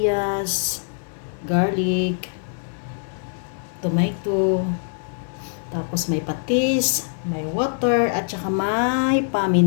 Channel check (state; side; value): silent; right; digital silence